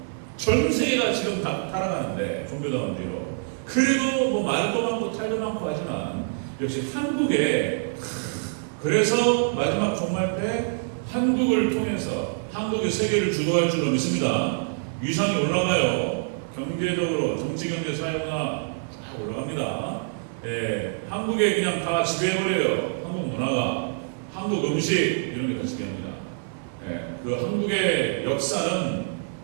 전 세계가 지금 다 타락하는데 종교다원주의로. 그래도 뭐 말도 많고 탈도 많고 하지만 역시 한국에 그래서 마지막 종말 때 한국을 통해서 한국이 세계를 주도할 줄로 믿습니다. 위상이 올라가요. 경제적으로 정치, 경제, 사회문화 쫙 올라갑니다. 한국에 그냥 다 지배해버려요. 한국 문화가, 한국 음식 이런 게 다 지배합니다. 그 한국의 역사는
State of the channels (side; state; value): left; silent; 61 dB below the other